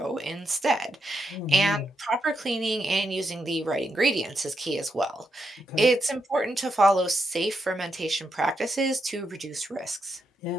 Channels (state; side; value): normal; both; correlation 0.82